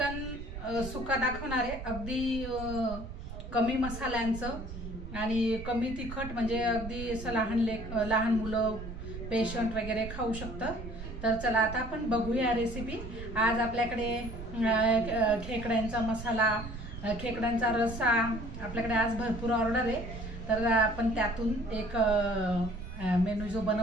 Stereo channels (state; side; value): noise; right; rumble, 9 dB below the sound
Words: सुका दाखवणार आहे। अगदी कमी मसाल्यांचं आणि कमी तिखट, म्हणजे अगदी असं लहान मुलं पेशंट वगैरे खाऊ शकतं। तर चला आता आपण बघूया रेसिपी। आज आपल्याकडे खेकड्यांचा मसाला, खेकड्यांचा रस्सा आपल्याकडे आज भरपूर ऑर्डर आहे। तर आपण त्यातून एक मेनू जो